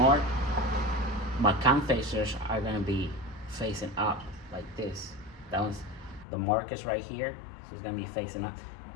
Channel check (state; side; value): drops out; right; at 6.2 s